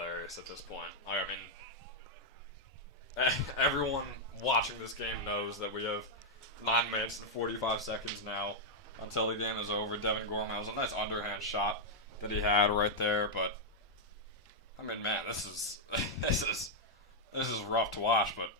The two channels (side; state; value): both; normal; correlation -0.03